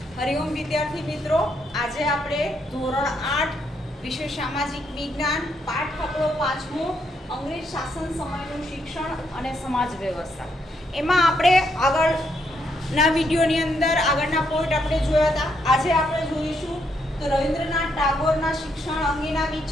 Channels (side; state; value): both; normal; correlation 0.76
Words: હરિઓમ વિદ્યાર્થી મિત્રો, આજે આપણે ધોરણ 8 વિષય સામાજિક વિજ્ઞાન પાઠ આપણો 5મો અંગ્રેજ શાસન સમયનું શિક્ષણ અને સમાજ વ્યવસ્થા એમાં આપણે આગળના વિડીયોની અંદર આગળના પોઈન્ટ આપણે જોયા હતા. આજે આપણે જોઈશું તો રવિન્દ્રનાથ ટાગોરના શિક્ષણ અંગેના